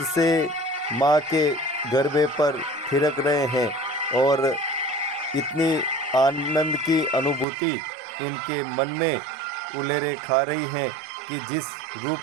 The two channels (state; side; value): drops out; left; at 7.5 s